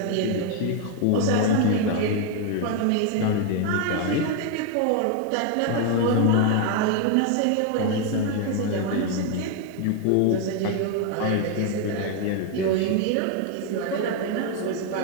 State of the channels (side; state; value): both; different; correlation 0.01